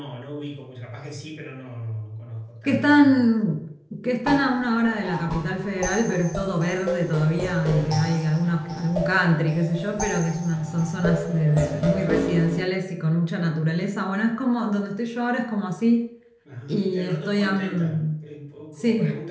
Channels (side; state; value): both; identical; correlation 1.00